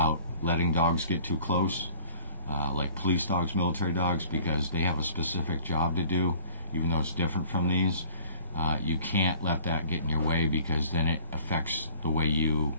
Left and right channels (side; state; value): both; inverted; correlation -0.49